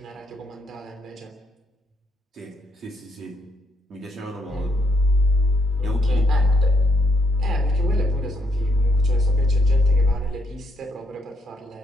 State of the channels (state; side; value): normal; both; correlation 0.74